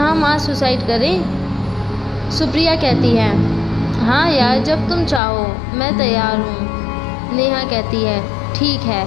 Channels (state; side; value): drops out; right; at 5.2 s